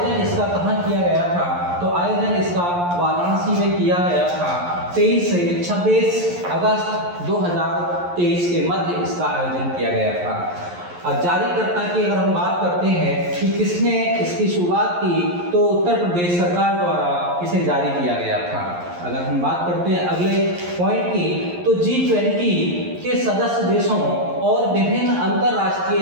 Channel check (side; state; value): left; late; 11 ms